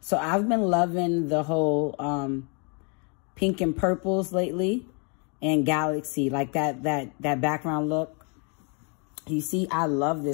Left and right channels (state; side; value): quieter; right; 36.4 dB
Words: So I've been loving the whole pink and purples lately, and galaxy, like that background look. You see, I love